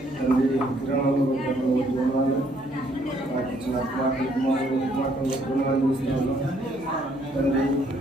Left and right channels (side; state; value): right; noise; hum, 25 dB below the sound